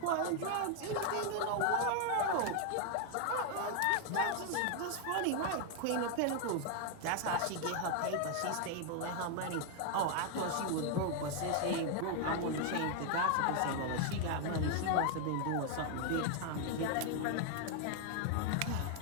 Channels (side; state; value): both; different; correlation 0.00